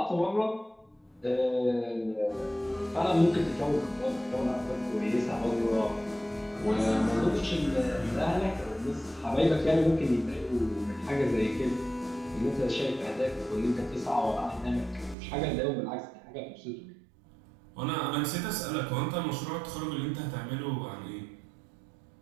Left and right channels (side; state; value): left; drops out; at 15.2 s